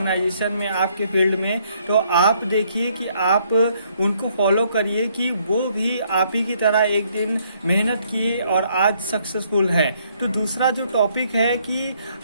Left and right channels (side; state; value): both; inverted; correlation -0.68